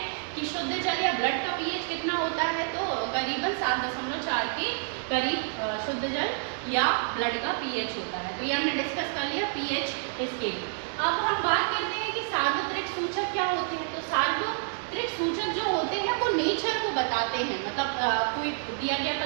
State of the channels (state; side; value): silent; left; 59 dB below the other